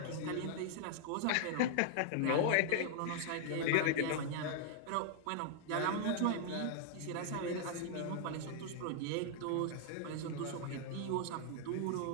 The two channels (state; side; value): different; both; correlation 0.00